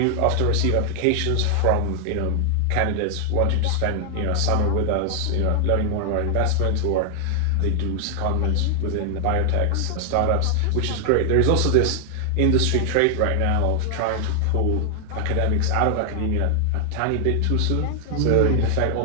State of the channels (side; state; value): both; different; correlation 0.00